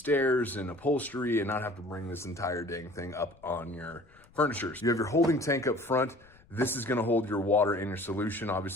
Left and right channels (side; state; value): left; noise; rumble, 27 dB below the sound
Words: and upholstery and not have to bring this entire dang thing up on your furniture. You have your holding tank up front. This is going to hold your water in your solution.